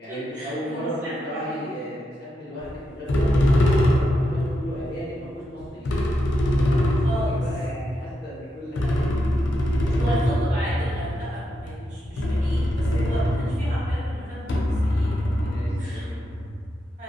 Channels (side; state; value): both; normal; correlation 0.85